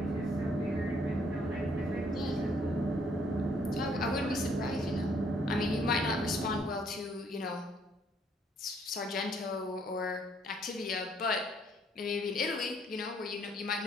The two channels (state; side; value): normal; both; correlation 0.66